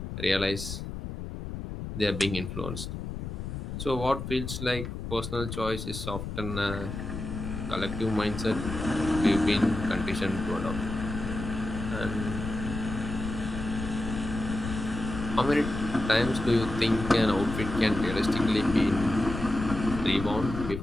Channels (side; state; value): left; noise; rumble, 6 dB below the sound